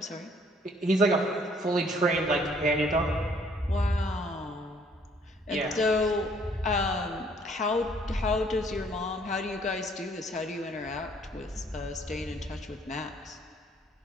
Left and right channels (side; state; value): both; normal; correlation 0.62